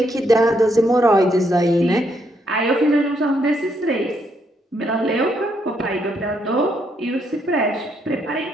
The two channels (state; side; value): normal; both; correlation 0.75